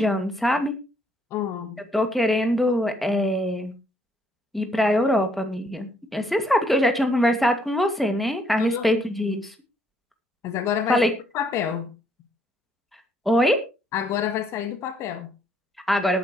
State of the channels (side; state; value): both; normal; correlation 0.69